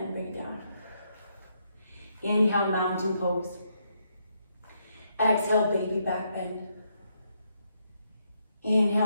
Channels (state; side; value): inverted; both; correlation -0.77